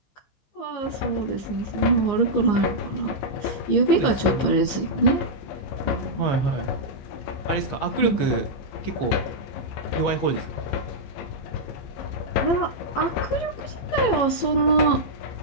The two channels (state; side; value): late; right; 15 ms